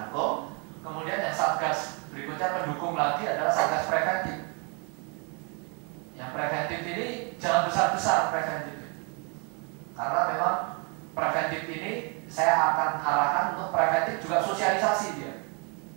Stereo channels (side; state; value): left; quieter; 34.8 dB